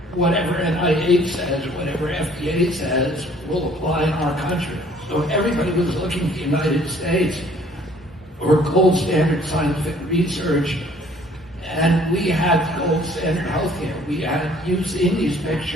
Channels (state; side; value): normal; both; correlation 0.57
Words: whatever NIH says, whatever FDA says, will apply in our country. So everybody was looking at the United States for gold standard scientific research, and we had gold standard healthcare. You've seen these